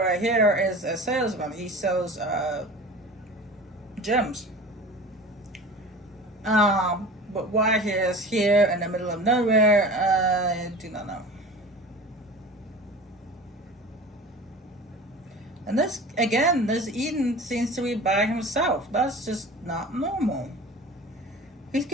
here is a salesman. He sells gems. But why he is here in the middle of nowhere, I do not know. And this Eden seems to be by himself. That's just not normal. He's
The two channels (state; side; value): normal; both; correlation 0.37